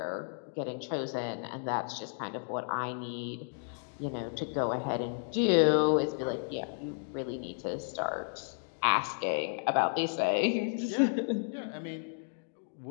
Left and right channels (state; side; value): silent; right; 56 dB below the other